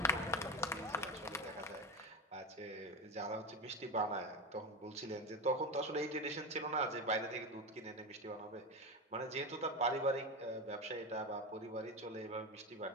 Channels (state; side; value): normal; both; correlation 0.20